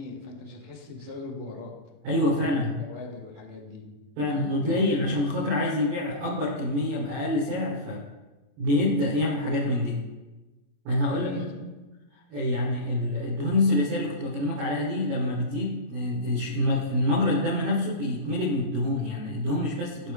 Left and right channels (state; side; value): late; left; 28 ms